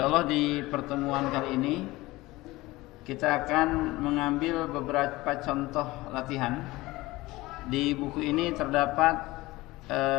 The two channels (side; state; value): right; quieter; 19.7 dB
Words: di pertemuan kali ini kita akan mengambil beberapa contoh latihan. Di buku ini terdapat